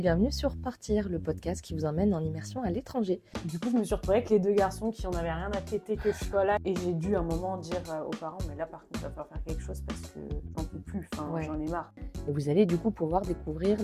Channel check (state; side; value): identical; both; correlation 1.00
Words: sur Partir, le podcast qui vous emmène en immersion à l'étranger. Du coup, je me suis retrouvée avec les deux garçons qui en avaient rien à péter que je sois là. Et j'ai dû à un moment dire aux parents, mais là par contre, il va falloir faire quelque chose parce que j'en peux plus, j'en ai marre. Et vous allez du coup pouvoir découvrir